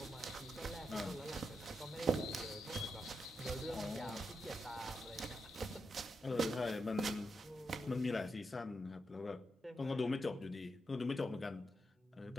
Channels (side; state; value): both; normal; correlation 0.85